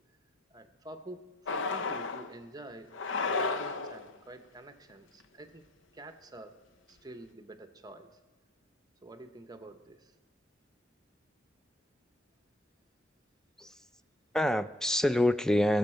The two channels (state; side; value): normal; both; correlation 0.63